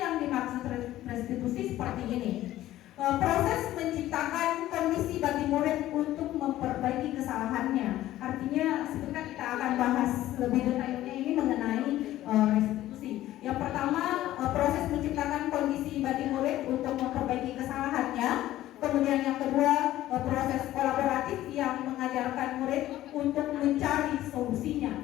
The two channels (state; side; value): quieter; right; 14.4 dB